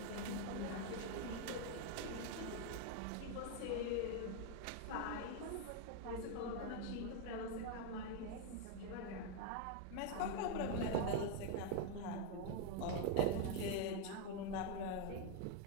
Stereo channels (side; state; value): both; different; correlation 0.01